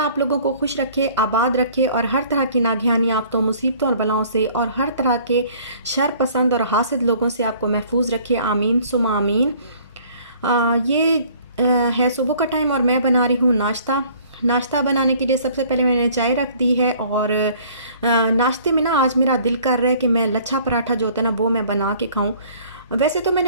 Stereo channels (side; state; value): both; inverted; correlation -0.55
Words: आप लोगों को खुश रखे, आबाद रखे और हर तरह की नागहानी आफतों, मुसीबतों और बलाओं से और हर तरह के शर पसंद और हासिद लोगों से आपको महफूज रखे। आमीन सुमा आमीन। ये है सुबह का टाइम और मैं बना रही हूँ नाश्ता। नाश्ता बनाने के लिए सबसे पहले मैंने चाय रख दी है और नाश्ते में ना आज मेरा दिल कर रहा है कि मैं लच्छा पराठा जो होता है ना वो मैं बना के खाऊं। वैसे तो